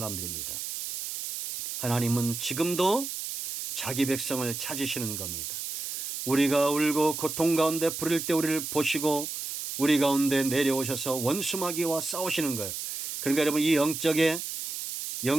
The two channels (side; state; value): right; noise; hiss, 6 dB below the sound